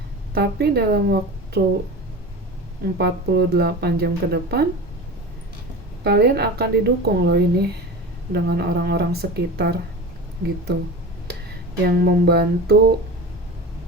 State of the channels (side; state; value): both; normal; correlation 0.31